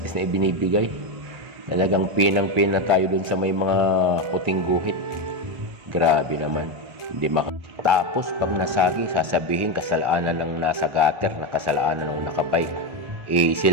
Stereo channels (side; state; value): left; late; 1.3 ms